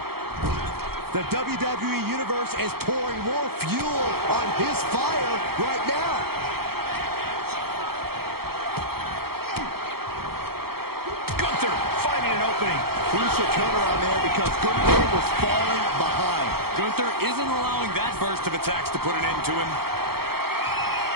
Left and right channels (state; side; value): late; left; 0.95 ms